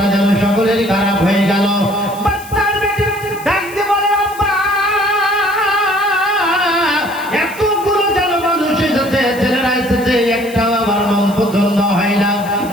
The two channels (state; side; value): noise; left; hiss, 18 dB below the sound